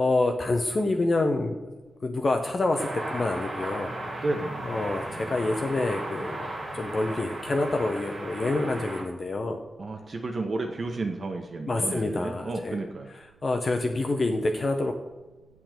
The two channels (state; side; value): noise; right; rumble, 30 dB below the sound